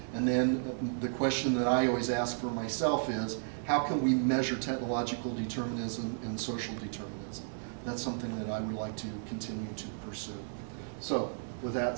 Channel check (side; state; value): left; silent; digital silence